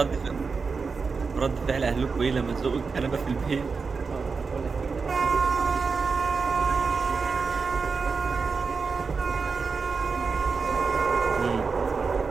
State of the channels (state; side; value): quieter; left; 4.9 dB